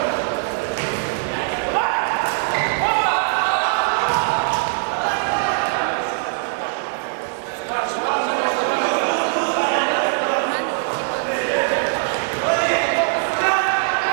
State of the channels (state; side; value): silent; left; 65 dB below the other